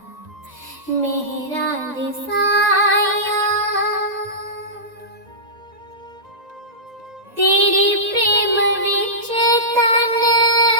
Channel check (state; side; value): late; left; 1.9 ms